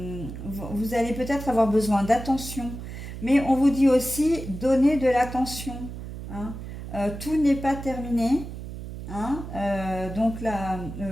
Vous allez peut-être avoir besoin d'attention, mais on vous dit aussi donner de l'attention, hein. Tout n'est pas terminé, hein. Donc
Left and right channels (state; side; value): noise; right; hum, 9 dB below the sound